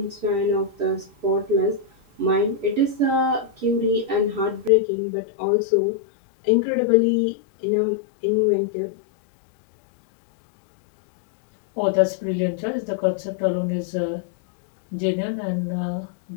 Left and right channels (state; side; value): drops out; right; at 4.7 s